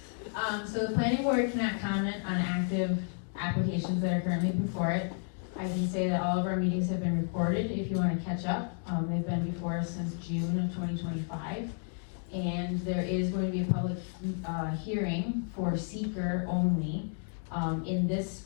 So the planning board cannot comment on active applications that are currently before it. I can say that all of our meetings have been recorded if you want to catch up. They've been before us since June of 2025. And there is going to be a public hearing for seeker only in this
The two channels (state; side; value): silent; right; 57 dB below the other